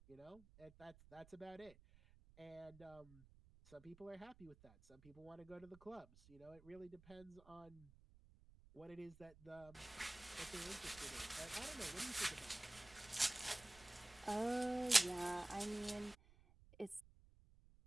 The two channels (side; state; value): right; noise; rumble, 22 dB below the sound